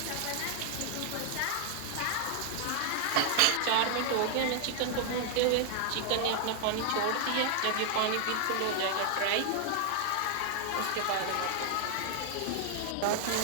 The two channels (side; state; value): both; different; correlation 0.00